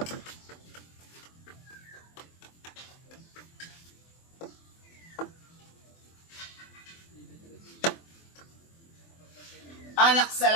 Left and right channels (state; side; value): late; right; 24 ms